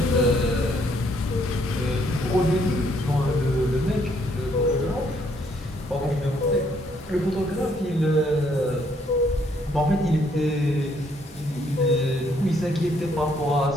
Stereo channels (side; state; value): both; normal; correlation 0.69